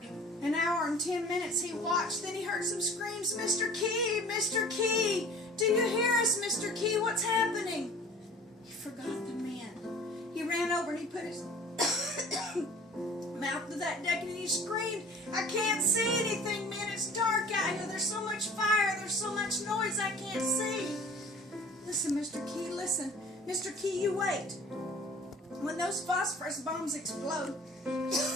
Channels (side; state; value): both; normal; correlation 0.47